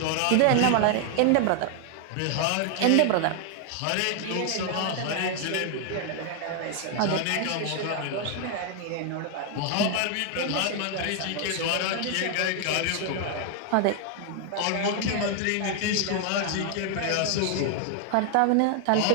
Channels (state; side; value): different; both; correlation 0.00